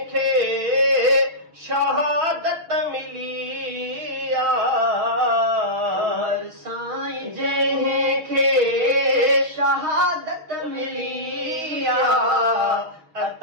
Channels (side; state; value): left; late; 6.3 ms